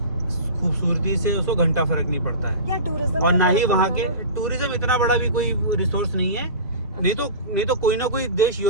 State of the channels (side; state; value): both; inverted; correlation -0.32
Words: खूबसूरती से उसको घंटा फर्क नहीं पड़ता है। क्या टूरिज्म और में ना ही फर्क वहाँ पड़ता के है ना? टूरिज्म इतना बड़ा भी कोई रिसोर्स नहीं है। नहीं तो कोई ना कोई देश